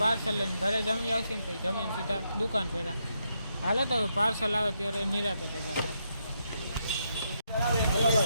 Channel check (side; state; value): both; inverted; correlation -0.80